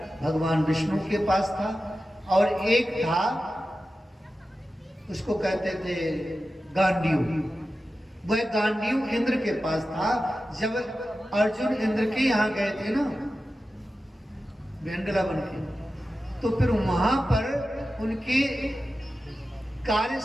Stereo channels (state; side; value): normal; both; correlation 0.93